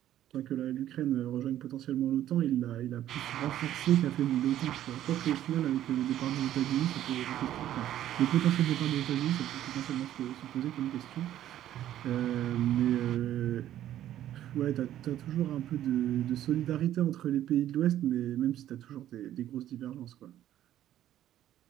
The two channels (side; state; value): left; quieter; 12.3 dB